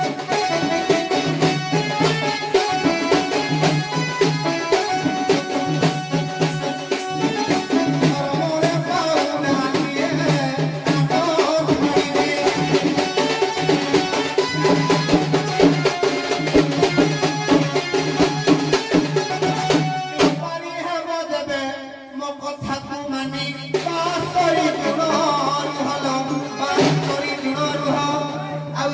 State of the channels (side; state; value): both; identical; correlation 1.00